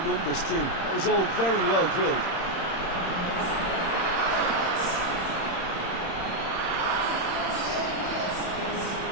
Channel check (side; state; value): right; late; 31 ms